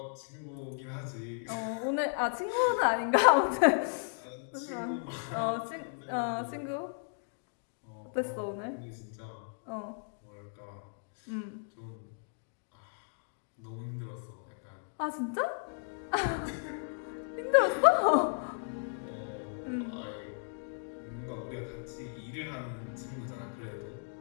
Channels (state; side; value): silent; right; digital silence